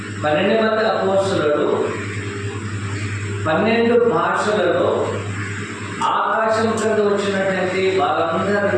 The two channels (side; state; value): both; identical; correlation 1.00